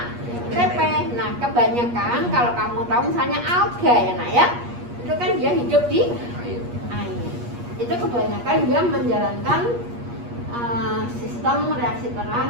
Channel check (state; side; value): late; left; 8.4 ms